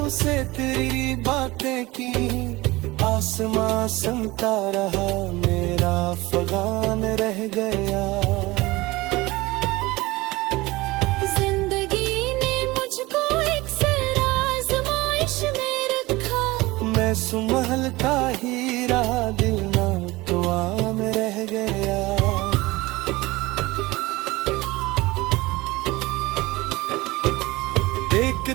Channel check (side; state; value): left; quieter; 20.8 dB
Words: से तेरी बातें की, आस आसमां सुनता रहा, मेरा फगान रह गया। जिंदगी ने मुझको एक सर आजमाइश में रखा, मैं सुमहल का हीरा, दिल ना दुआ में रह गया।